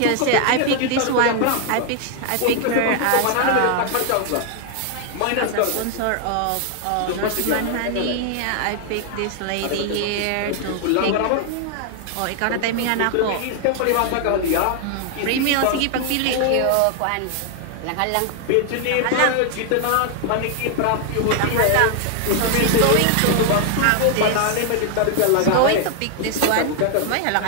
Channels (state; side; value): different; both; correlation 0.00